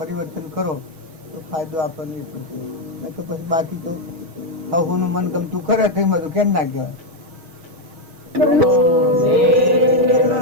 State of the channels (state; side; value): late; left; 6.3 ms